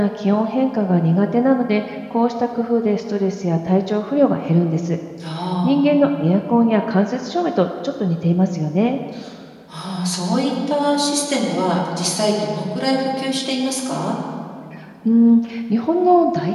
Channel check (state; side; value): identical; both; correlation 1.00